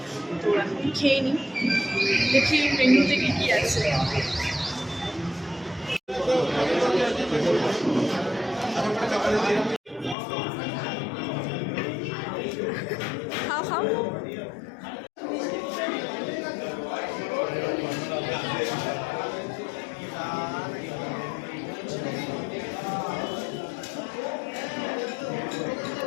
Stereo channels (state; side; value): drops out; right; at 10.2 s